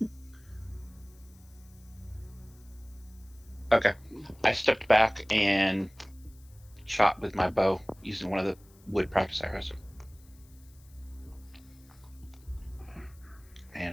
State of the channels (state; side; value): noise; left; hiss, 28 dB below the sound